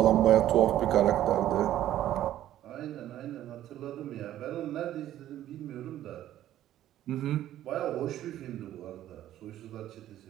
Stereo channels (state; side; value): quieter; left; 12.7 dB